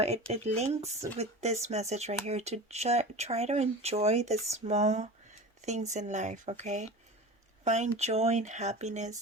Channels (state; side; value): normal; both; correlation 0.32